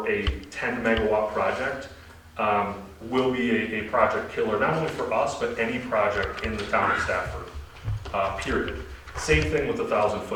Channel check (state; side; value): identical; both; correlation 1.00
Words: a 10 megawatt project will be a project killer, not only for us, but any project in the town of Stafford, period. Same thing with the